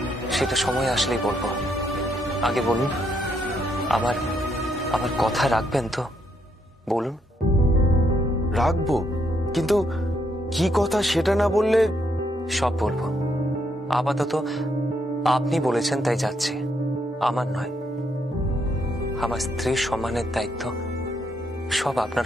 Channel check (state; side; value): normal; both; correlation 0.75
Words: সেটা সময় আসলেই বলবো। আগে বলুন, আমার আমার কথা রাখবেন তো? বলুন। রাখবো, কিন্তু কি কথা সেটা না বললে? সব বলবো। আপাতত আপনি বলেছেন তাই যাচ্ছে, আমার নয়। আমার স্ত্রীর সম্মানের দায়িত্ব সব আপনার